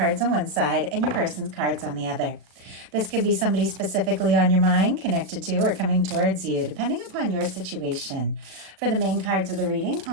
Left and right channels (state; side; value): late; left; 37 ms